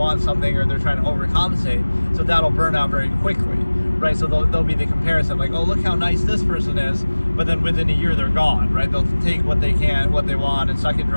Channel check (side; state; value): both; inverted; correlation -1.00